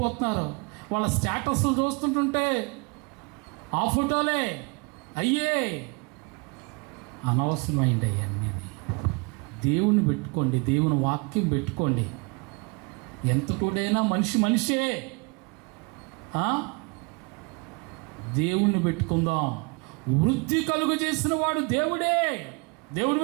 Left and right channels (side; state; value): left; quieter; 30.7 dB